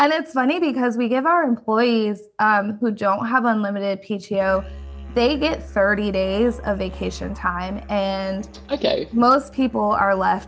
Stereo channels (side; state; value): both; identical; correlation 1.00